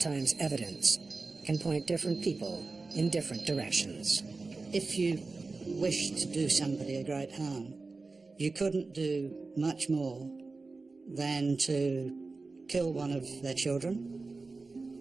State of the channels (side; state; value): left; quieter; 3.8 dB